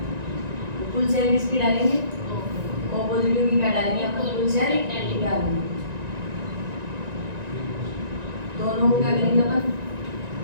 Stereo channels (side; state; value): left; late; 1.9 ms